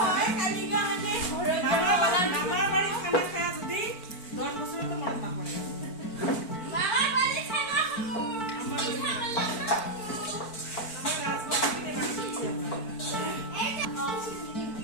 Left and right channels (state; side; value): late; right; 4.5 ms